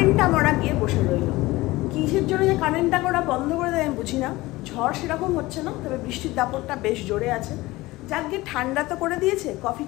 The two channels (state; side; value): quieter; right; 19.6 dB